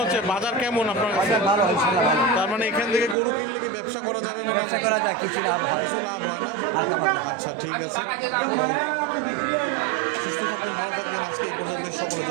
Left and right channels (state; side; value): drops out; left; at 3.2 s